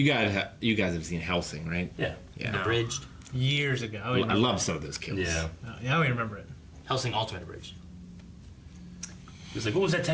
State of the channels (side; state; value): both; identical; correlation 1.00